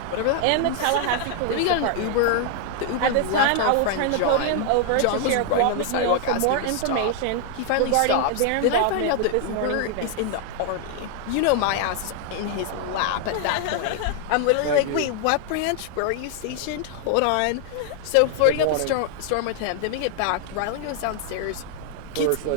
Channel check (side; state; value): both; different; correlation 0.00